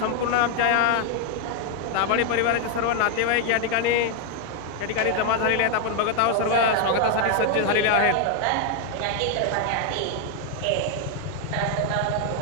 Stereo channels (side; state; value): both; different; correlation 0.01